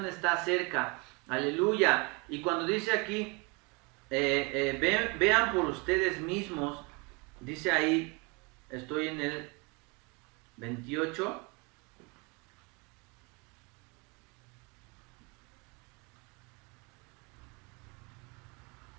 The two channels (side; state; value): left; quieter; 29.4 dB